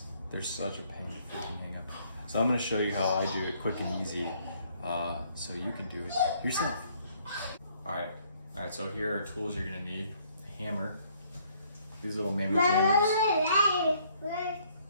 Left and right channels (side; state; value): both; inverted; correlation -0.65